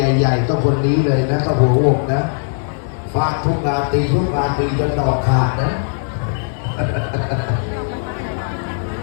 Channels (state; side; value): silent; right; 67 dB below the other